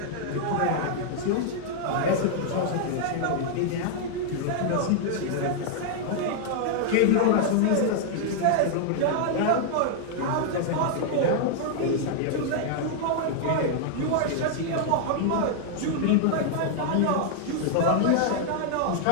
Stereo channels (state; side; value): different; both; correlation 0.00